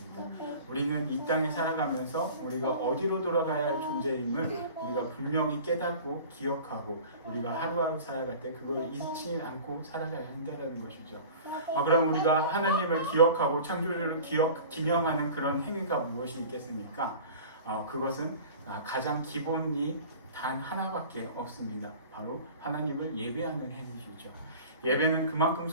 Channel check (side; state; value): both; inverted; correlation -0.41